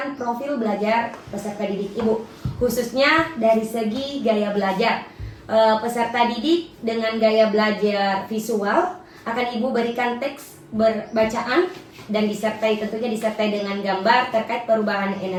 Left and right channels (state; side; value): identical; both; correlation 1.00